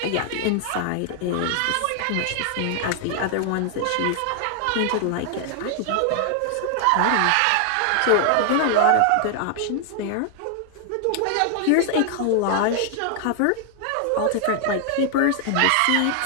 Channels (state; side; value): different; both; correlation 0.00